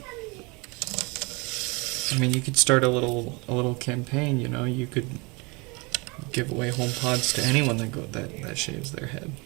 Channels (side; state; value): left; quieter; 27.9 dB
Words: I mean, you could start a little campaign. You know, you could give away HomePods to anyone that shaves their head.